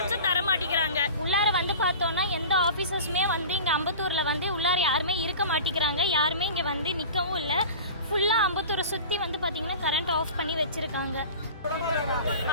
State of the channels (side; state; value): both; inverted; correlation -0.36